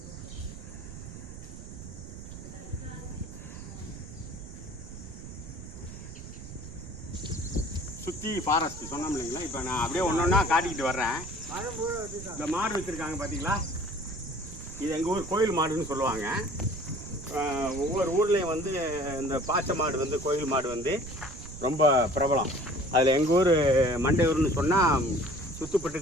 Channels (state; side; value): noise; right; rumble, 12 dB below the sound